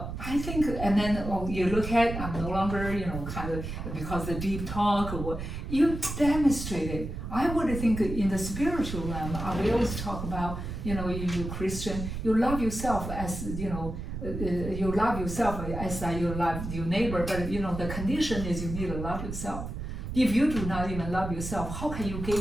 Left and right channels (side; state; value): right; noise; rumble, 6 dB below the sound